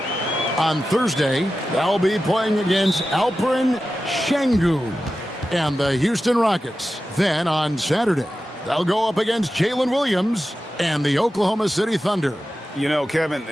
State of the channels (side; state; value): both; normal; correlation 0.93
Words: On Thursday, they'll be playing against Alperen Şengün and the Houston Rockets. Then on Saturday, they'll go up against Jalen Williams and the Oklahoma City Thunder. You know, Kevin,